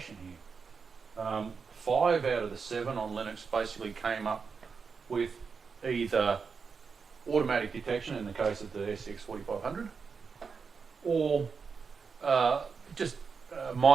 here. 5 out of the 7 on Linux basically came up with either automatic detection in the case of the SCX 4500 or just a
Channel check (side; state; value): left; quieter; 5.4 dB